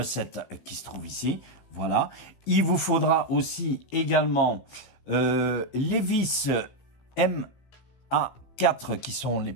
qui se trouve ici, voilà. Il vous faudra aussi également les vis MA4 qui sont les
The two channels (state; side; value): late; right; 15 ms